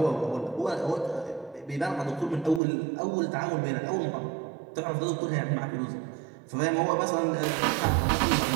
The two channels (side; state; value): left; drops out; at 2.6 s